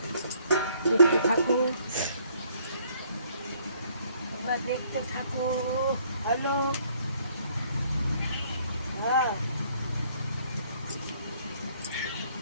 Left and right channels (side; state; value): both; inverted; correlation -0.63